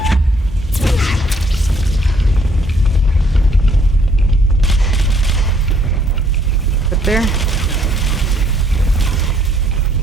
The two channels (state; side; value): normal; both; correlation 0.65